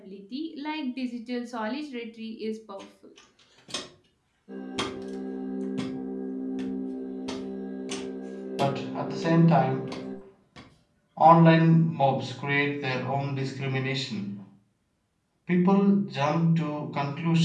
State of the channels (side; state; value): both; identical; correlation 1.00